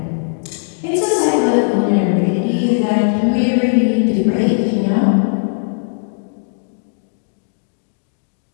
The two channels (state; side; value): silent; right; digital silence